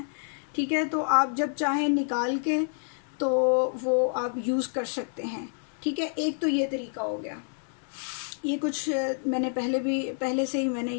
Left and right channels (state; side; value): silent; right; digital silence